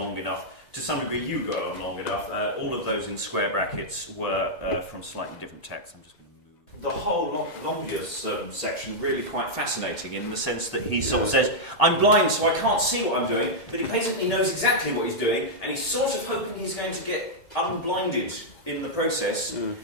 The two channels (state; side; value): late; right; 2.1 ms